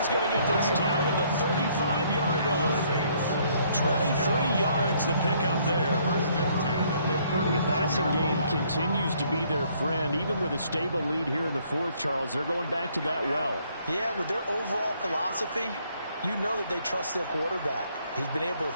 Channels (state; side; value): inverted; both; correlation -0.65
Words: going to get this down to the 35-yard line. 23 yards the pickup there. The passing game continues to be their friend. Even with a stable lead here in the fourth, Charles, they're going back to that well. Yeah, with their overall philosophy, you know that they trust their quarterback. He's been able to